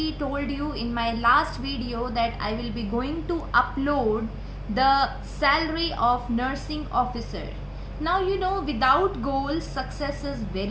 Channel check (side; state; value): both; identical; correlation 1.00